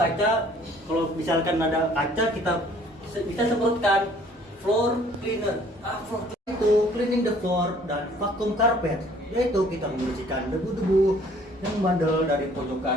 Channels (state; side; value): normal; both; correlation 0.57